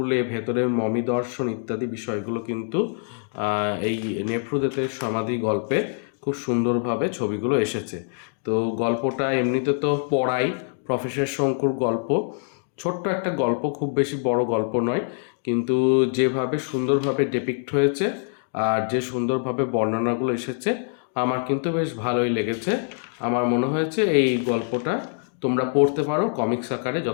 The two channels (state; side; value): silent; right; 59 dB below the other